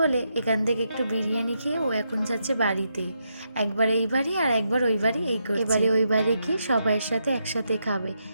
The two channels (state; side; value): inverted; both; correlation -0.82